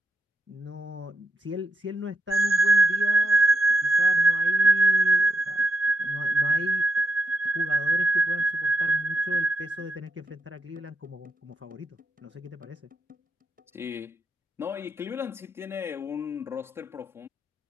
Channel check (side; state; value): both; normal; correlation 0.84